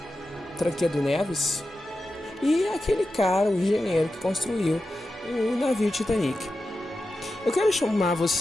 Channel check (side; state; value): both; normal; correlation 0.91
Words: Tancredo Neves, e aquele cara, o engenheiro que construiu o navio Titanic. Eu quero chamar